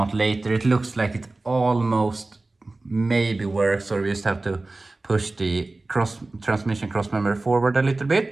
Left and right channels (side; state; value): left; quieter; 3.1 dB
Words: later. It looks like it almost maybe works, or we just have to push the transmission cross member forward a little